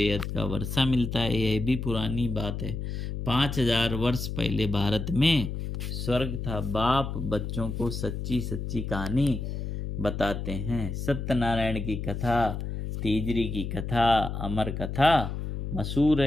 का वर्षा मिलता है। यह भी पुरानी बात है। 5000 वर्ष पहले भारत में स्वर्ग था। बाप बच्चों को सच्ची सच्ची कहानी बताते हैं। सत्यनारायण की कथा, तीजरी की कथा, अमर कथा मशहूर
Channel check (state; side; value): noise; left; hum, 4 dB below the sound